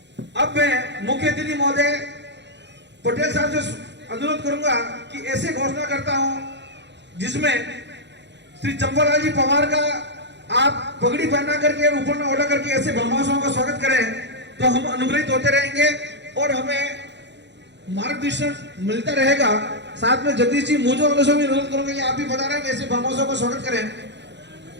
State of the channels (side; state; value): left; late; 0.51 ms